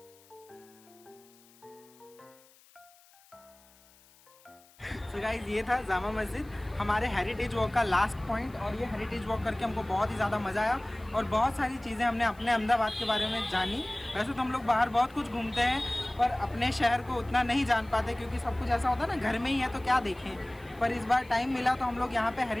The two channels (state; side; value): noise; left; hiss, 28 dB below the sound